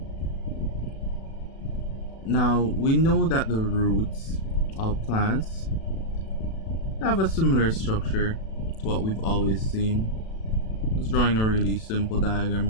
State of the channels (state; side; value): late; right; 36 ms